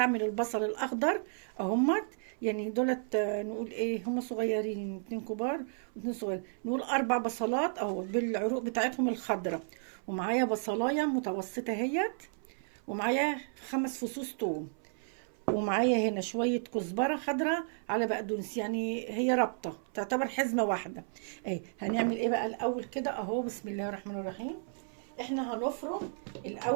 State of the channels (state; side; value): silent; left; 56 dB below the other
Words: البصل الاخضر اهمت. يعني دولت نقول ايه هم صغيرين، اتنين كبار واتنين صغيرين، نقول 4 بصلات اهو بالعروق بتاعتهم الخضراء. ومعايا بصلايه متوسطه اهيت. ومعايا 5 فصوص توم. ومعايا هنا شوية كزبرة خضراء على بقدونس، يعني هي رابطة تعتبر حزمة واحدة. اهي هنعمل ايه بقى الاول كده اهو. بسم الله الرحمن الرحيم. احنا هنفرم